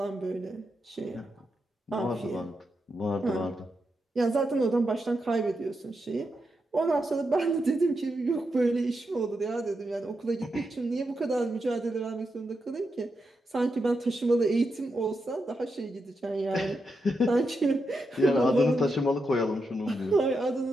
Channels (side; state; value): both; normal; correlation 0.85